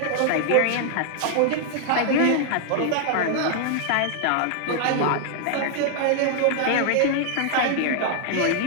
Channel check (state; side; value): different; both; correlation 0.00